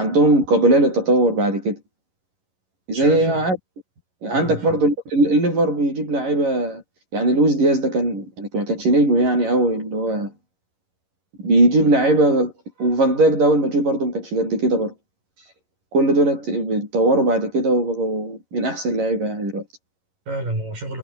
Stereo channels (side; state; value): left; late; 11 ms